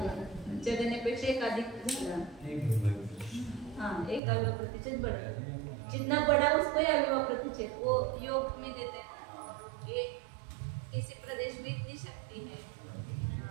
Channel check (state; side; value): drops out; left; at 4.2 s